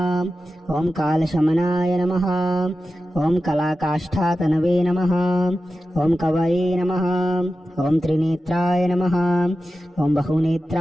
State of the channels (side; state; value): both; normal; correlation 0.93